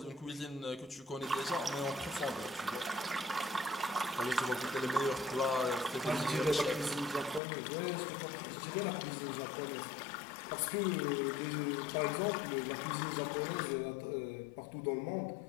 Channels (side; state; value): right; drops out; at 7.4 s